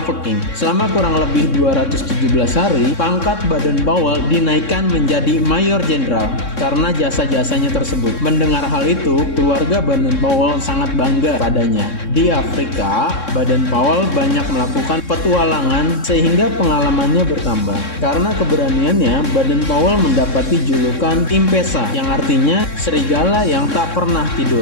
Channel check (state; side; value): late; right; 3.6 ms